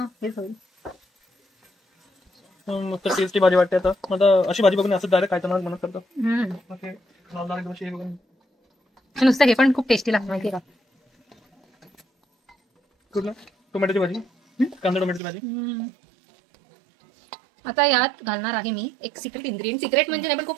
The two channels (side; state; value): left; drops out; at 15.2 s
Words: हेच होईल. मस्त टेस्टी भाजी वाटते. आता मला अशी भाजी बघून असं डायरेक्ट खायचं म्हणत करतो. नुसतं हे पण खूप टेस्टी लागतं माहिती का. कुठलं? टोमॅटोची भाजी, कांदा टोमॅटोची भाजी. आता यात घालणार आहे मी एक सिक्रेट इन्ग्रेडियंट. सिक्रेट म्हणजे नाही पण